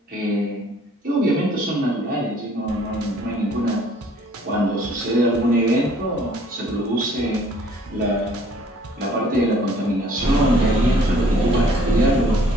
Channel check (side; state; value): both; normal; correlation 0.58